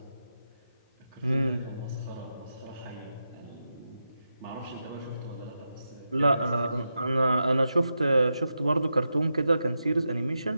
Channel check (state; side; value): inverted; both; correlation -0.88